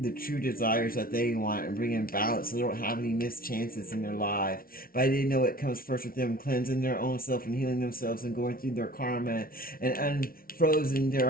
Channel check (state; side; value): late; right; 0.43 ms